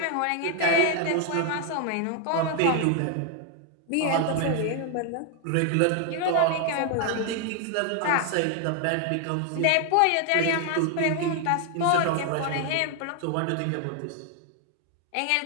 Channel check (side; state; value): both; different; correlation 0.00